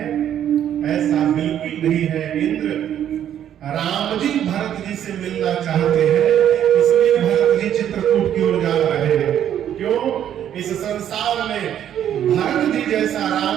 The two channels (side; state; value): left; quieter; 10.3 dB